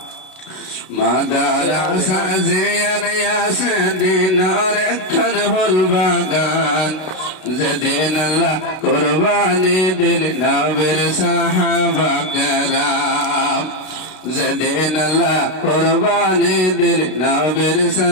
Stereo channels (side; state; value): right; late; 32 ms